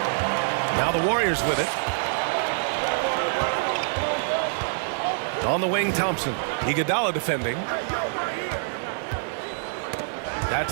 Now the Warriors with it. On the wing, Thompson. Iguodala defending.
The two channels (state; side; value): silent; left; 61 dB below the other